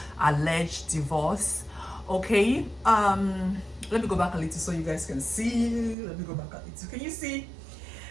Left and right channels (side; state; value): left; drops out; at 6.0 s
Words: alleged divorce. Okay, let me go back a little so you guys can see. Let me go back a little. Can you see?